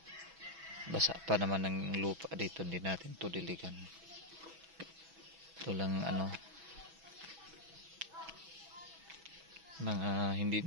Basa pa naman ng lupa dito, hindi natin ito diligan. Ito lang mga hindi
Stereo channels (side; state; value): left; late; 6.1 ms